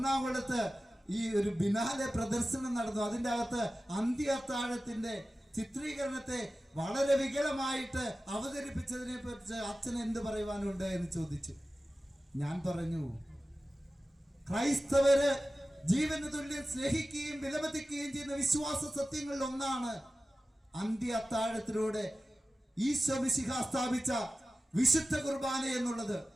ഈ ഒരു ബിനാലെ പ്രദർശനം നടന്നു, അതിൻ്റെ അകത്ത് അന്ത്യ അത്താഴത്തിന്റെ ചിത്രീകരണത്തെ വളരെ വികലമായിട്ട് അവതരിപ്പിച്ചതിനെ പറ്റി അച്ഛൻ എന്ത് പറയുവാനുണ്ട് എന്ന് ചോദിച്ചു. ഞാൻ പറഞ്ഞു, ക്രൈസ്തവര് ജീവന് തുല്യം സ്നേഹിക്കുകയും വിലമതിക്കുകയും ചെയ്യുന്ന വിശ്വാസ സത്യങ്ങളിൽ ഒന്നാണ് അന്ത്യ അത്താഴത്തിലൂടെ ഈശോ മിശിഹ സ്ഥാപിച്ച വിശുദ്ധ കുർബാന എന്നുള്ളത്.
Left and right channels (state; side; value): normal; both; correlation 0.95